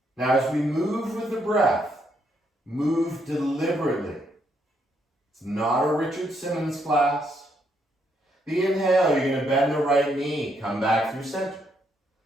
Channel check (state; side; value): normal; both; correlation 0.75